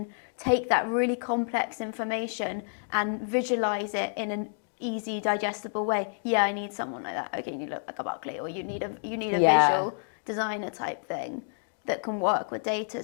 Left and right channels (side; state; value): right; silent; digital silence